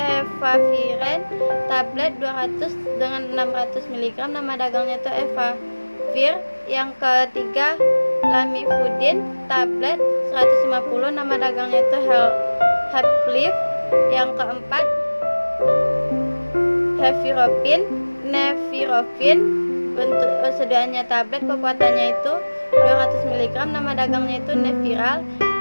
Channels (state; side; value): inverted; both; correlation -1.00